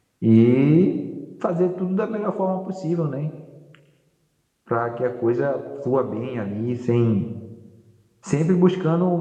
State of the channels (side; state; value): both; identical; correlation 1.00